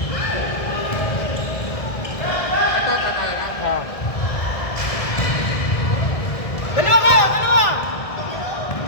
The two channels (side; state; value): right; late; 1.7 ms